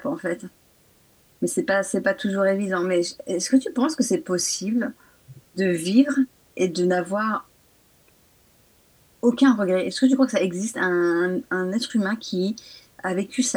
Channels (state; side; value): identical; both; correlation 1.00